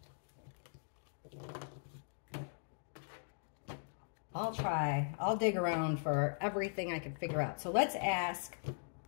I'll try. I'll dig around for everything I can figure out. So let's ask,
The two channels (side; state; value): right; silent; digital silence